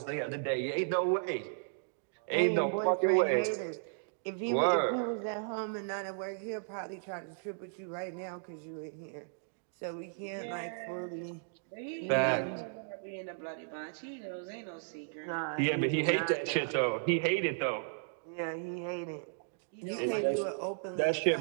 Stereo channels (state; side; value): silent; left; digital silence